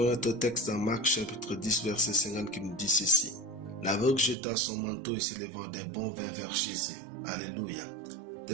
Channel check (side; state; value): left; drops out; at 4.4 s